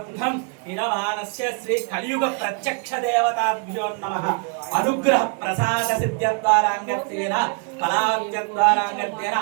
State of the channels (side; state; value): left; quieter; 35.6 dB